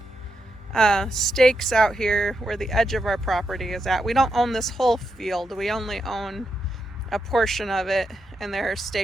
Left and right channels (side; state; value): both; normal; correlation 0.83